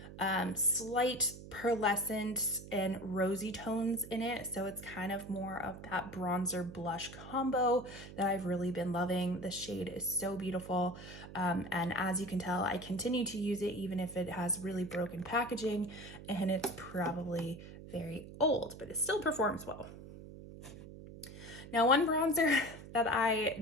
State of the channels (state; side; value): noise; right; hum, 14 dB below the sound